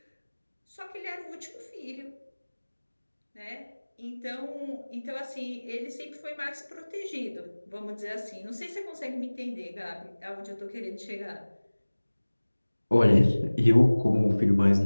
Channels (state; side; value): inverted; both; correlation -1.00